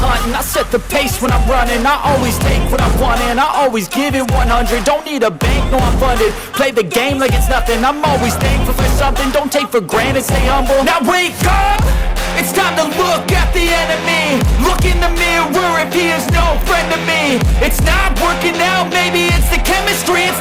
hunt, and I set the pace when I'm running. I always take what I want and I always give it 100. Don't need a bank, no I'm funded. Play the game like it's nothing. I'm always thankful for something. Don't take for granted, stay humble. Now wake up, it's time to look at the enemy. Look in the mirror if he is no friend to me. It's not working out, maybe it's the chemistry. It's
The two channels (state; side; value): identical; both; correlation 1.00